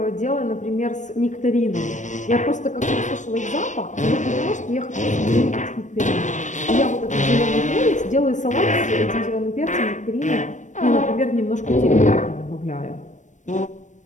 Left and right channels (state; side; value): late; right; 0.35 ms